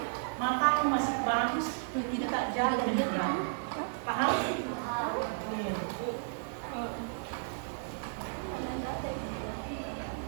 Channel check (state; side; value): silent; left; digital silence